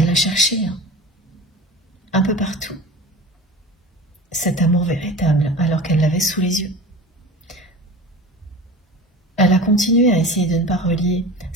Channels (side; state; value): both; normal; correlation 0.34